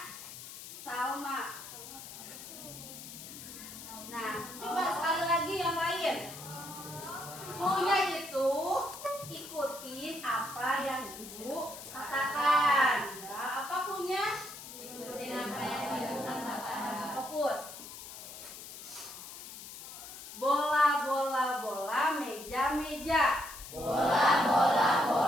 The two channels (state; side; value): noise; left; hiss, 12 dB below the sound